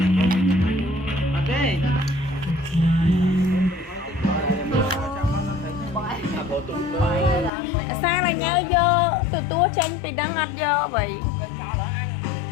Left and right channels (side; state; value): right; drops out; at 7.5 s